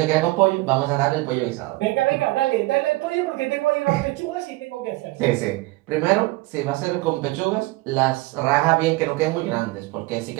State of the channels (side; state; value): left; quieter; 21.2 dB